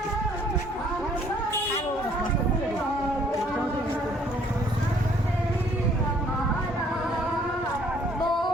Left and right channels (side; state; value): both; normal; correlation 0.61